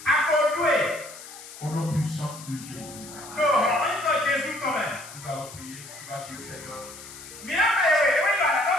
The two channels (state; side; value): noise; left; hiss, 15 dB below the sound